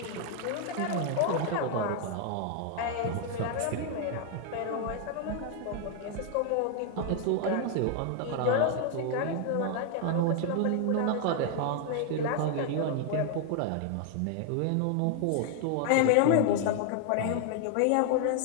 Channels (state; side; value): different; both; correlation 0.00